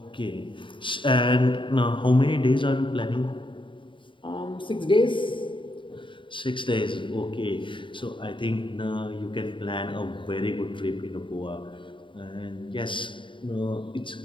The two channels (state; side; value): late; right; 0.24 ms